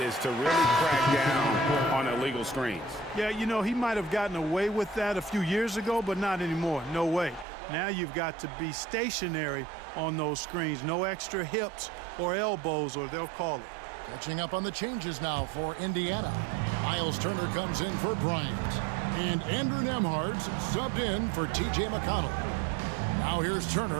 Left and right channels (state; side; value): drops out; left; at 7.5 s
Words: is to really crack down on illegal screens. Yeah, you know, he might have gotten away with that a few years ago, but not anymore. No way. Now you've got to be stationary on those screens. No extra hips or elbows, or they'll call it. Catching up on the changes now for Indiana. Miles Turner comes in for Bryant. And Andrew Nembhard's subbed in for T.J. McConnell. Now here's